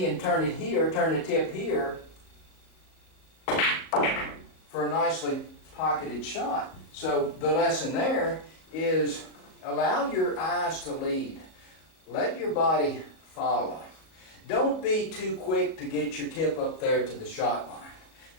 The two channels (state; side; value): late; right; 37 ms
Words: and turn it here, turn the tip here for a nicely pocketed shot. So the lesson there is allow your eyes to lead. Let your body follow. Don't be too quick to get your tip up there to the shot line.